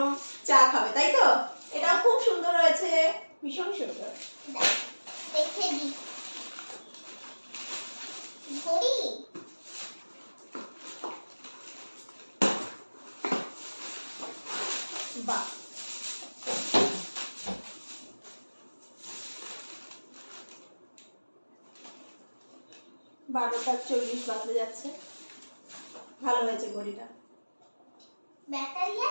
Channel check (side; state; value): both; inverted; correlation -1.00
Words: চা খাবে, তাই তো? এটা খুব সুন্দর হয়েছে, ভীষণ সুন্দর। দেখে দি ঘড়ি। বাহ, 12:40 বাজতে যাচ্ছে। ভালো হয়েছে ঘড়িটা। ব্যাটারি